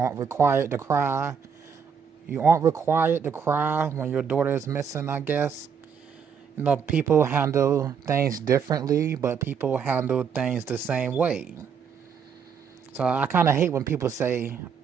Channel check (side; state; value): left; quieter; 6.8 dB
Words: required to cry. You aren't required to cry when your daughter is missing, I guess. People handle things differently, but people handle things the same way. So I kind of hate when people say,